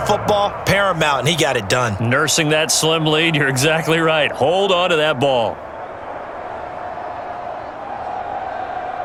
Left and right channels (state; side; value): identical; both; correlation 1.00